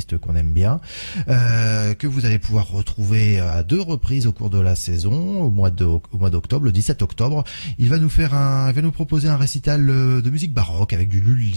qu'on aime bien, que vous allez pouvoir retrouver à 2 reprises au cours de la saison, au mois d'octobre, le 17 octobre. Il va nous proposer un récital de musique baroque avec du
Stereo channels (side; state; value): both; inverted; correlation -1.00